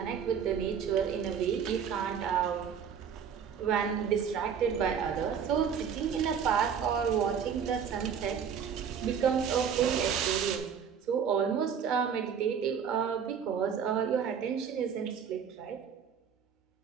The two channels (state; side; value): quieter; left; 7.4 dB